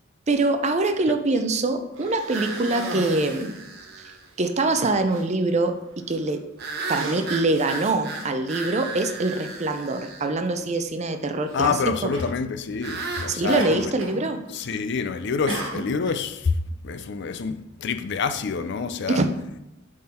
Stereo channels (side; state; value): both; normal; correlation 0.27